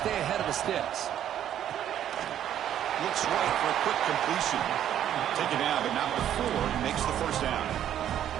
ahead of the sticks. Looks right for a quick completion. Taken out, but not before he makes the first down.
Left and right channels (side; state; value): left; quieter; 10.6 dB